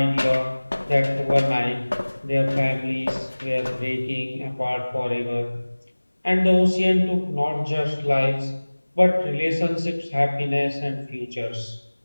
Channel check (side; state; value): both; inverted; correlation -1.00